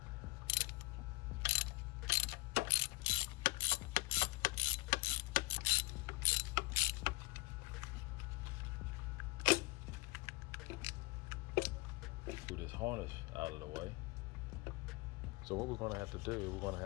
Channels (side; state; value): right; quieter; 22.4 dB